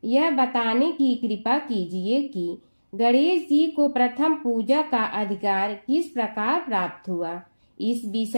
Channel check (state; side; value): inverted; both; correlation -1.00